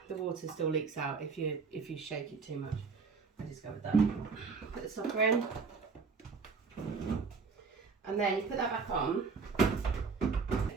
water still leaks out if you shake it too much. I discovered that. Put the stopper in, and then you put that back on.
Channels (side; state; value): left; quieter; 5.0 dB